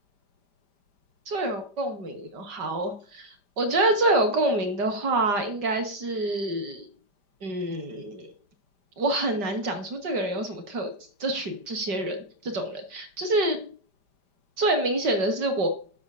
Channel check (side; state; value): left; late; 5.0 ms